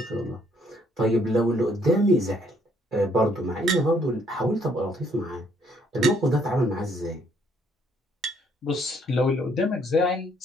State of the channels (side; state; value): both; normal; correlation 0.67